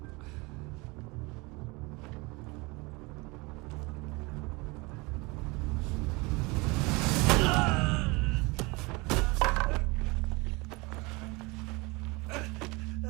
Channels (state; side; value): quieter; left; 25.8 dB